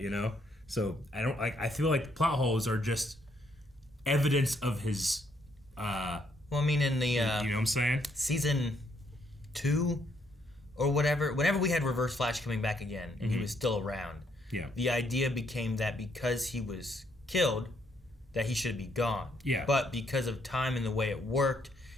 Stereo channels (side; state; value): both; normal; correlation 0.72